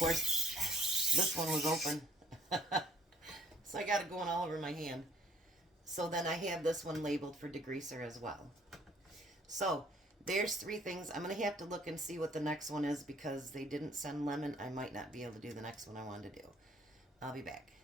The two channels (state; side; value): normal; both; correlation 0.61